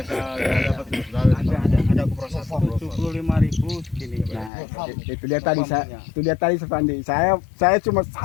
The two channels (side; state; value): right; drops out; at 4.5 s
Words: dapat ada proses 75.000 segini. Nah, itu dia tadi Sepandi. Saya cuma